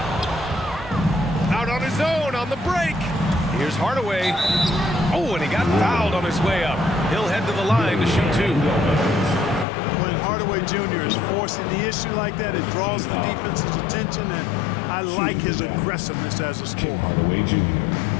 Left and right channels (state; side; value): drops out; right; at 9.7 s